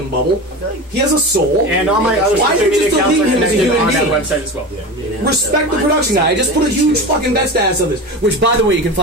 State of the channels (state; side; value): normal; both; correlation 0.28